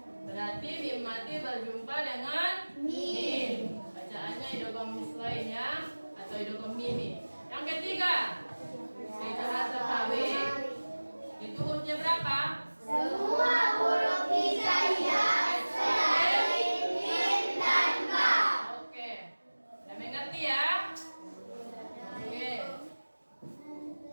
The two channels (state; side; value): inverted; both; correlation -1.00